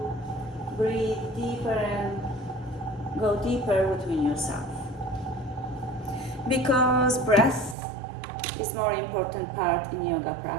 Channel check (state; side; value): drops out; left; at 7.8 s